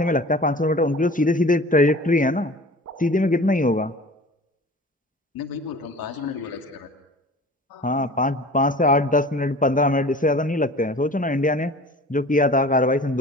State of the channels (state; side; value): normal; both; correlation 0.41